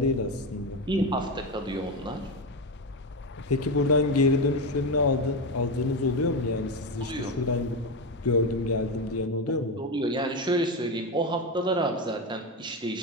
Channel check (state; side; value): normal; both; correlation 0.14